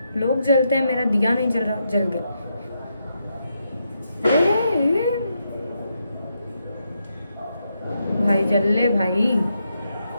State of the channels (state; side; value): inverted; both; correlation -0.82